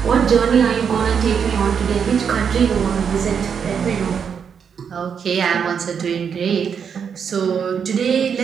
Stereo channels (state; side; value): quieter; left; 7.0 dB